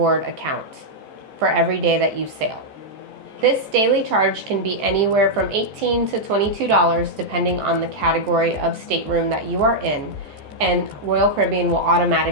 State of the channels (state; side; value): late; left; 14 ms